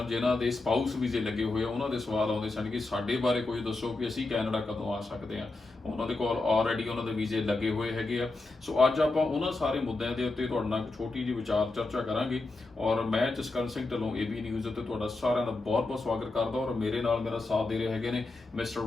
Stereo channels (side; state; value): right; quieter; 3.2 dB